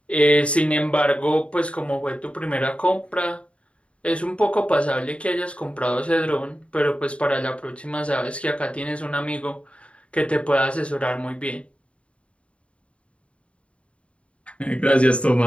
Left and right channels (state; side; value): late; right; 0.061 ms